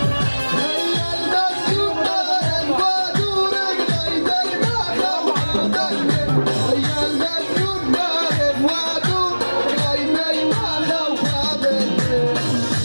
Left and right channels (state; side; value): inverted; both; correlation -1.00